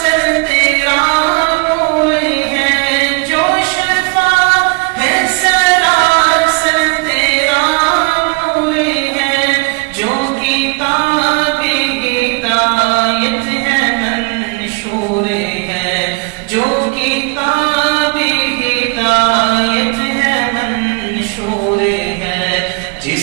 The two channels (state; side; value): quieter; left; 28.7 dB